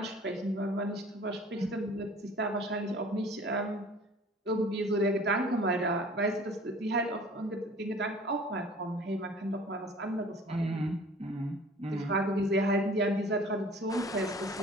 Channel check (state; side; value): normal; both; correlation 0.48